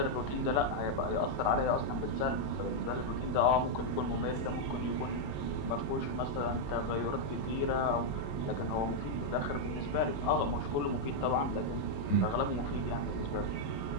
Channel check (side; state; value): right; late; 28 ms